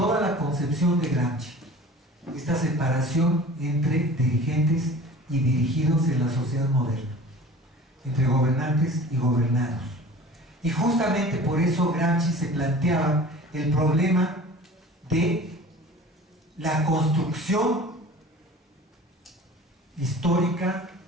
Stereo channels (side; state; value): both; normal; correlation 0.42